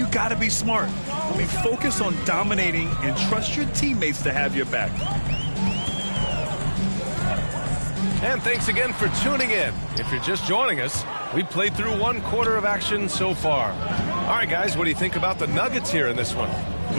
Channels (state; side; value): inverted; both; correlation -1.00